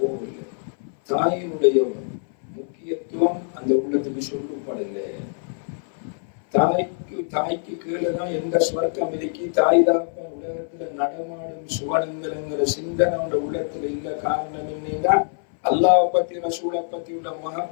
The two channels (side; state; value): right; silent; 58 dB below the other